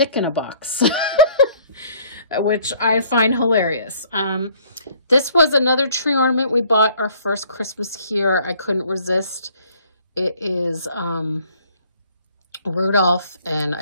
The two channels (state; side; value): inverted; both; correlation -0.59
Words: in a Box, which I find hilarious. This was another tree ornament we bought our first Christmas here. I couldn't resist. It is Rudolph and